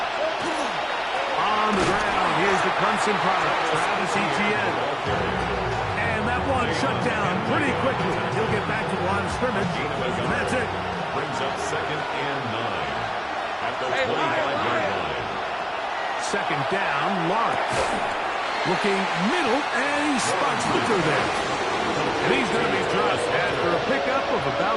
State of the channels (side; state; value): both; identical; correlation 1.00